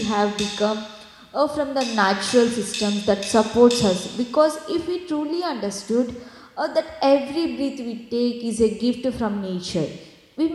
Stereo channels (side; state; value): both; identical; correlation 1.00